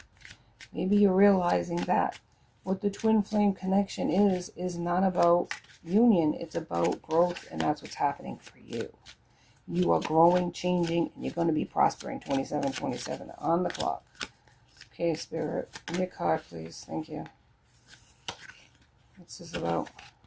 Maybe you're realizing that what the twin flame connection is not about union. It's about growth, and that's what's happening for you. You are growing, changing, and you're going to be prospering. 27 on the clock. Okay, Spirit, give me a card, please. Thank you. What's this about?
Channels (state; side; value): identical; both; correlation 1.00